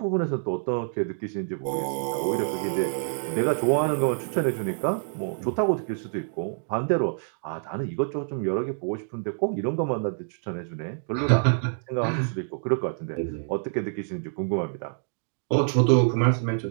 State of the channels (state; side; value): silent; left; digital silence